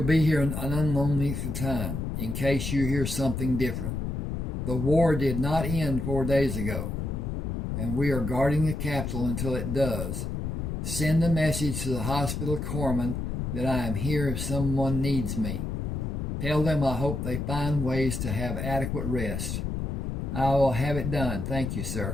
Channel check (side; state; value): left; noise; rumble, 3 dB below the sound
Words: case you hear something different. The war did not end 4 days ago, and we are guarding the capital until it does. Send a message to the hospital corpsmen that I am here if someone needs me. Tell them I hope they find ways to have adequate rest. I will have it done. Thank you,